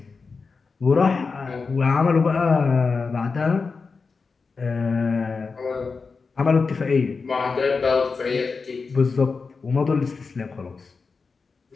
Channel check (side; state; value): right; quieter; 4.7 dB